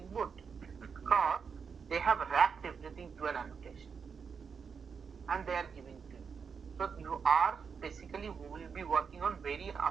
Boot? Because they have wrapped everything to an annotation and they are giving to you. So you are basically will be working on very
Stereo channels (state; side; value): quieter; left; 6.1 dB